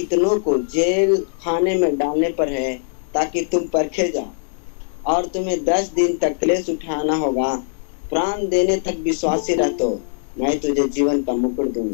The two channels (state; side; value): silent; right; digital silence